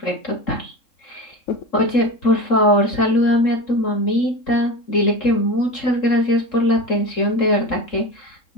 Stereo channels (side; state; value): right; late; 3.7 ms